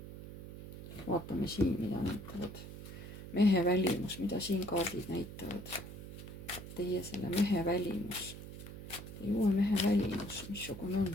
Vaatame siin, mida näitavad. Mehe välimus, mida siin kaardid näitavad. Teie selle mehe välimus. Teie uue mehe välimus, missugune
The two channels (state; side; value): noise; right; hum, 12 dB below the sound